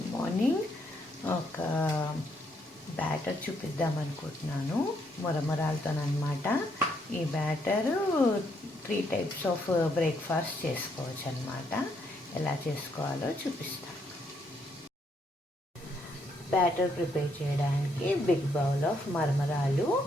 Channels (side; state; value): both; normal; correlation 0.74